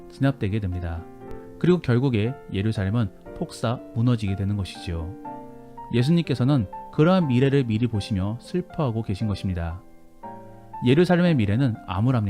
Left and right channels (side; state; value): both; identical; correlation 1.00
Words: 진압되게 됩니다. 그리고 결국에 예루살렘은 폭사 무너지게 되는 것이지요. 예수님께서는 그러한 미래를 미리 보시며 슬퍼하고 계신 것입니다. 예루살렘의 미래는